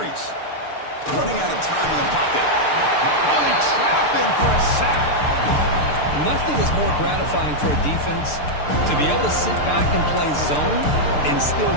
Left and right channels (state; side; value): late; right; 6.7 ms